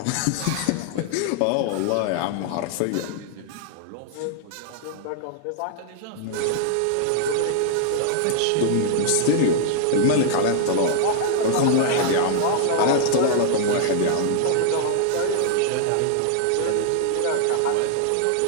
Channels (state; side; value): different; both; correlation -0.01